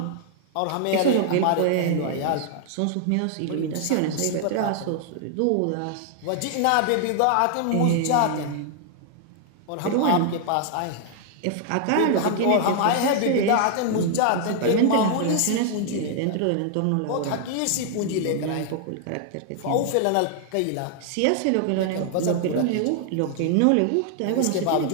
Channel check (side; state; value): both; different; correlation 0.00